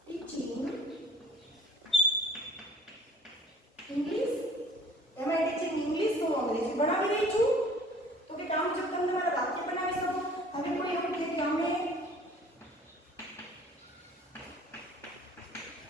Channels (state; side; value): normal; both; correlation 0.51